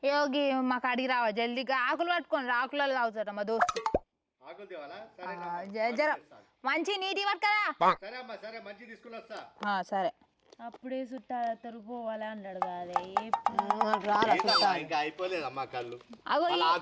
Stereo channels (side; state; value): both; identical; correlation 1.00